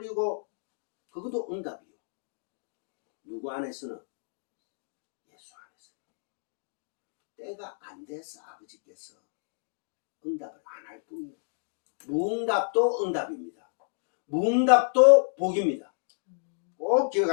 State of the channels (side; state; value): right; silent; digital silence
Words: 그것도 응답이요. 누구 안에서는? 예수 안에서는. 때가 안 돼서 아버지께서 응답을 안 할 뿐이에요. 무응답도 응답입니다. 무응답도 복입니다. 꼭